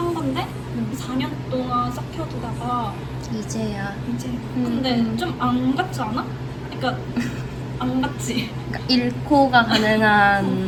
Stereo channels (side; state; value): both; identical; correlation 1.00